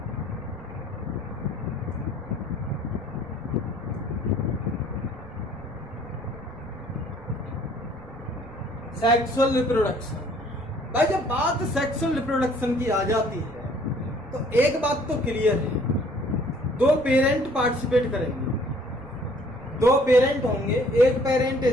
सेक्सुअल रिप्रोडक्शन, भाई जब बात सेक्सुअल रिप्रोडक्शन की आ जाती है तो एक बात तो क्लियर है, दो पेरेंट पार्टिसिपेट करेंगे, दो पेरेंट होंगे, एक पेरेंट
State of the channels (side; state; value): right; noise; rumble, 19 dB below the sound